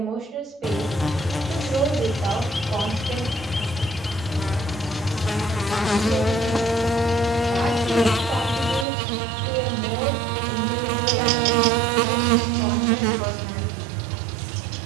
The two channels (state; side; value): drops out; left; at 8.8 s